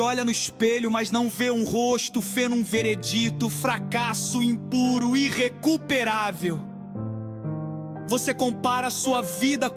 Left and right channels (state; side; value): identical; both; correlation 1.00